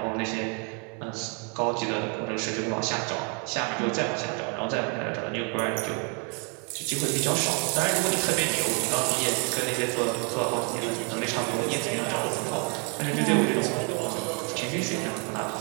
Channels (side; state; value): left; quieter; 36.6 dB